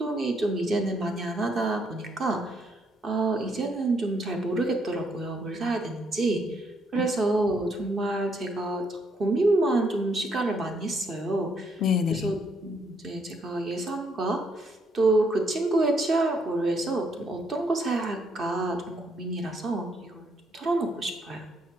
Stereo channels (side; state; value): both; normal; correlation 0.72